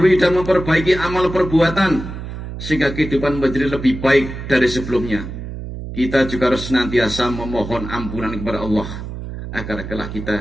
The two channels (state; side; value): noise; right; hum, 9 dB below the sound